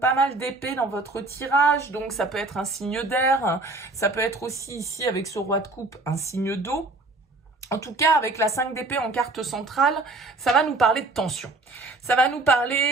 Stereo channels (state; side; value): quieter; left; 3.1 dB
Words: mal d'épées dans votre tirage, donc ça peut être un signe d'air. Ça peut être aussi ici, avec ce roi de coupe, un signe d'eau. En tout cas, avec la 5 d'épée en carte centrale, ça va nous parler de tension. Ça va nous